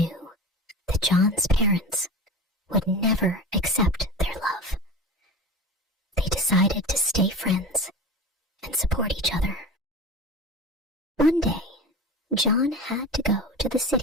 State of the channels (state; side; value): normal; both; correlation 0.31